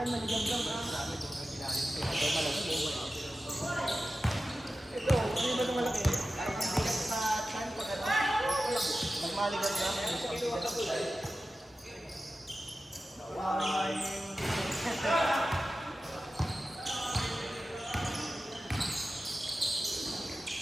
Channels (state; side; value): normal; both; correlation 0.94